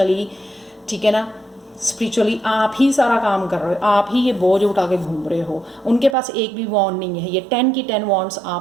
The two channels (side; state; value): left; drops out; at 6.2 s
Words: ठीक है ना, स्पिरिचुअली आप ही सारा काम कर रहे हो, आप ही ये बोझ उठा के घूम रहे हो। उनके पास एक भी वॉन्ड नहीं है, ये 10 की 10 वॉन्ड्स